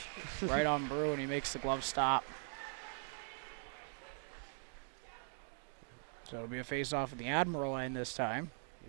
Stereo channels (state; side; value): silent; left; 50 dB below the other